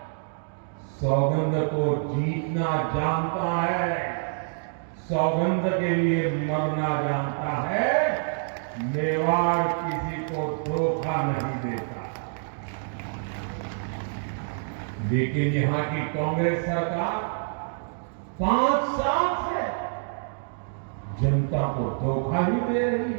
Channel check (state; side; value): silent; left; digital silence